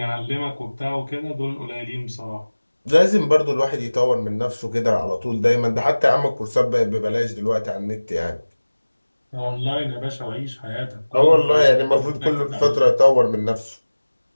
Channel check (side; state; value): both; inverted; correlation -1.00